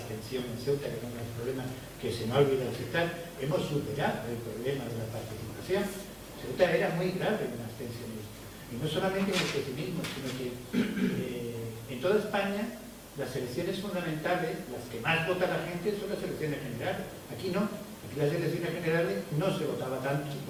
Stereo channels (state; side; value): identical; both; correlation 1.00